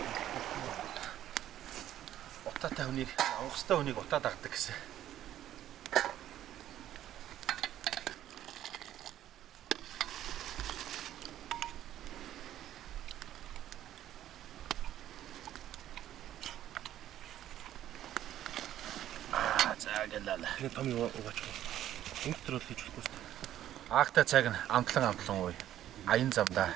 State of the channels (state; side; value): quieter; left; 12.2 dB